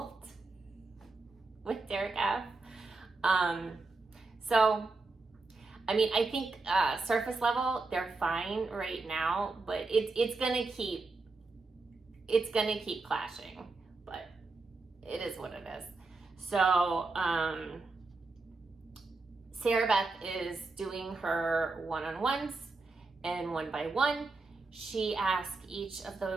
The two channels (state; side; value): quieter; left; 3.7 dB